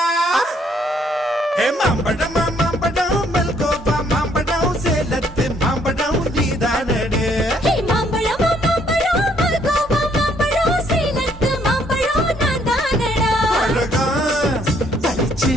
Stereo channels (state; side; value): normal; both; correlation 0.67